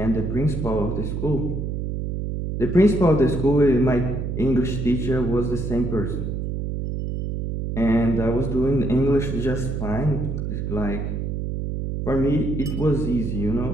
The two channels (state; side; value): noise; right; hum, 3 dB below the sound